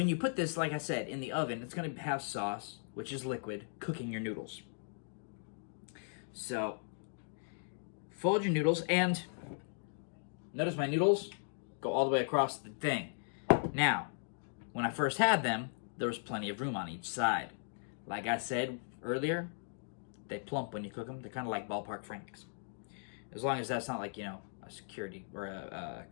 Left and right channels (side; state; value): right; silent; digital silence